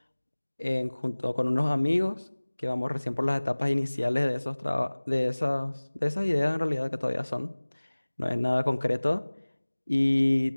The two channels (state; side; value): inverted; both; correlation -1.00